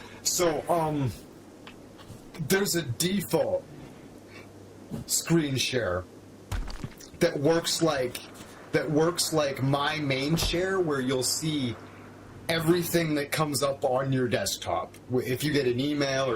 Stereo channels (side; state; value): both; identical; correlation 1.00